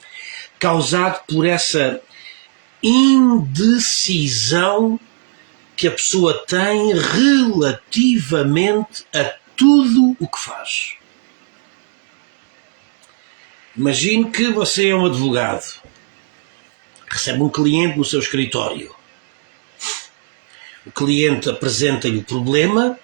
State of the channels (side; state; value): left; silent; digital silence